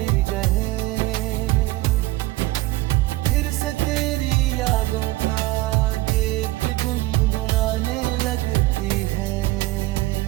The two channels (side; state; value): left; quieter; 18.4 dB